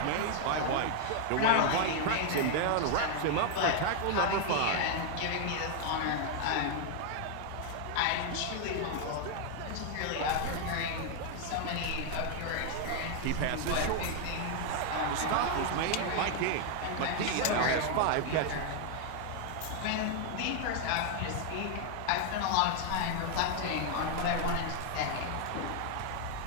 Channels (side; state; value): both; different; correlation 0.00